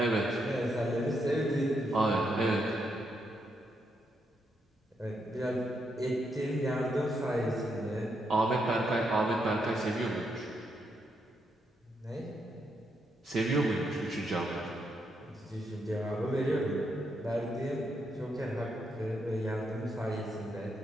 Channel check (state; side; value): normal; both; correlation 0.79